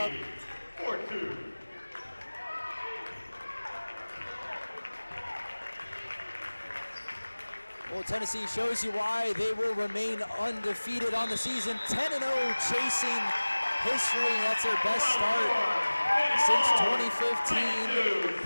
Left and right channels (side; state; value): both; inverted; correlation -1.00